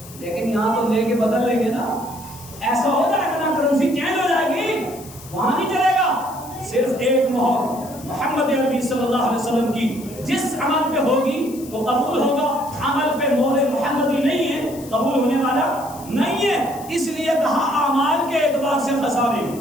لیکن یہاں تو لے کے بدل لیں گے نا. ایسا ہو جائے گا نا, کرنسی چینج ہو جائے گی, وہاں نہیں چلے گا. صرف ایک مہر محمد عربی صلی اللہ علیہ وسلم کی جس عمل پہ ہوگی وہ قبول ہوگا. عمل پہ مہر محمدی نہیں ہے قبول ہونے والا نہیں ہے. اس لیے کہا اعمال کے اعتبار سے خسارے,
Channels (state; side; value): noise; left; hiss, 18 dB below the sound